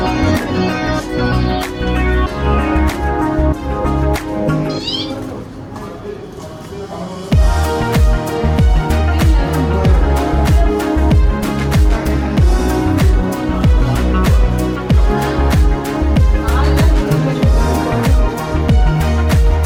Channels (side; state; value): both; identical; correlation 1.00